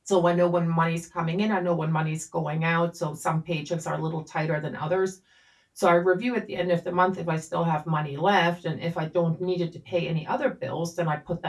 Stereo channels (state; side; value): identical; both; correlation 1.00